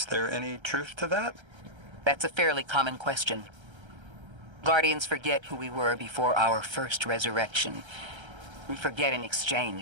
there any truth to that? That's a fairly common question. Guardians forget who we were before our first resurrection. We forget in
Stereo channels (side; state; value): left; late; 1.3 ms